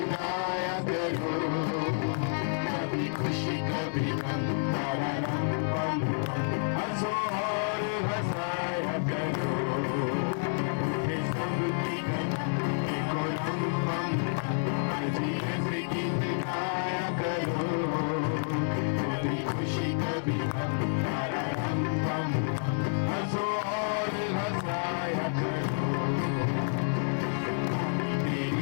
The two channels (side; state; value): right; silent; 58 dB below the other